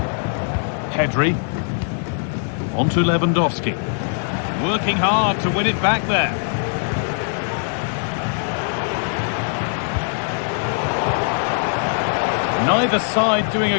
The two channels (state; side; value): silent; right; digital silence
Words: Pedri. On to Lewandowski. Working hard to win it back there. Neither side doing